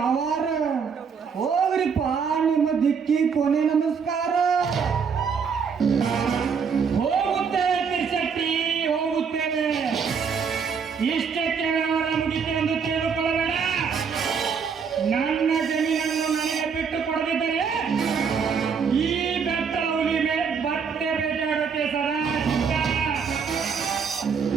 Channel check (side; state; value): left; quieter; 6.2 dB